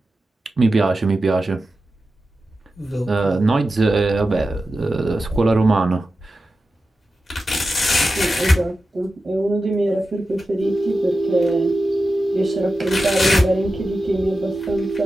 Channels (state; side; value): normal; both; correlation 0.92